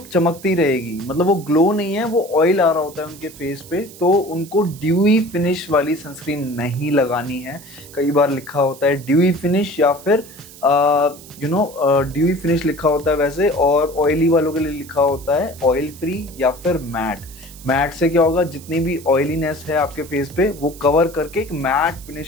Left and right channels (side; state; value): right; noise; hiss, 19 dB below the sound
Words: चमकती रहेगी, मतलब वो ग्लो नहीं है, वो ऑयल आ रहा होता है उनके फेस पे। तो उनको ड्यूई फिनिश वाली सनस्क्रीन नहीं लगानी है। कई बार लिखा होता है ड्यूई फिनिश या फिर ड्यूई फिनिश लिखा होता है वैसे, और ऑयली वालों के लिए लिखा होता है ऑयल फ्री या फिर मैट। मैट से क्या होगा, जितनी भी ऑयलीनेस है आपके फेस पे वो कवर करके एक मैट